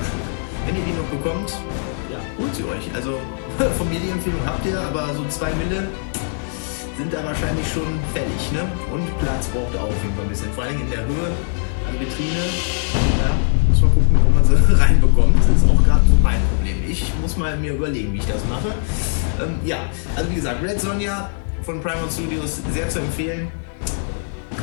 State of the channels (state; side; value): silent; right; 55 dB below the other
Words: Wenn ihr die noch bekommt, ja, holt sie euch. Also von mir die Empfehlung habt ihr, aber so 2 Mille sind da wahrscheinlich schon fällig, ne? Und Platz braucht auch auf jeden Fall ein bisschen. Vor allem in der Höhe, an Vitrine, ja, muss man gucken, wo man sie reinbekommt. Das ist auch gerade so mein Problem. Ich muss mal mir überlegen, wie ich das mache. Ja, also wie gesagt, Red Sonja von Primal Studios sehr zu empfehlen.